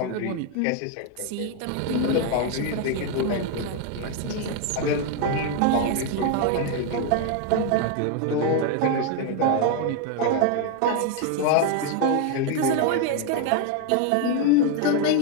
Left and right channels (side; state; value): both; different; correlation 0.01